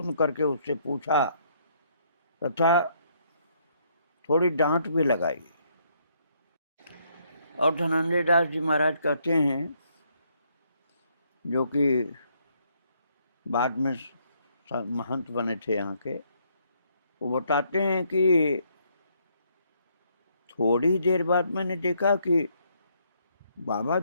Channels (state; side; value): inverted; both; correlation -0.70